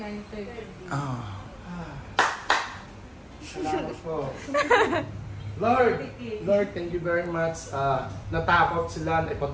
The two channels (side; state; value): both; identical; correlation 1.00